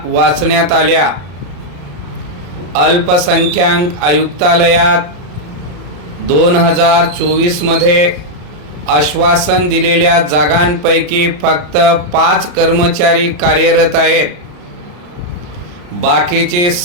वाचण्यात आल्या। अल्पसंख्याक आयुक्तालयात 2024 मध्ये आश्वासन दिलेल्या जागांपैकी फक्त 5 कर्मचारी कार्यरत आहेत। बाकीची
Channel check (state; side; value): late; left; 34 ms